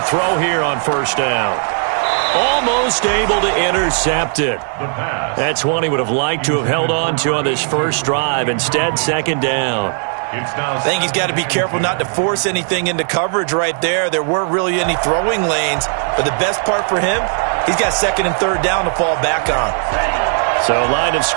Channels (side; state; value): left; silent; 61 dB below the other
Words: throw here on first down. Almost able to intercept it. That's one he would have liked to have held on to on this first drive. Instead, second down. I think he's got to be careful not to force anything into coverage right there. There weren't really any throwing lanes. But the best part for him, he's got second and third down to fall back on. So line of